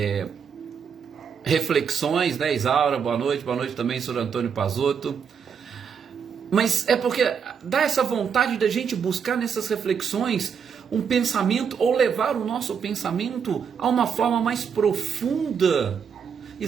reflexões, né, Isaura, boa noite também, Sr. Antônio Pazotto. Mas é porque dá essa vontade da gente buscar nessas reflexões um pensamento, ou levar o nosso pensamento a uma forma mais profunda,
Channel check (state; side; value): quieter; left; 6.9 dB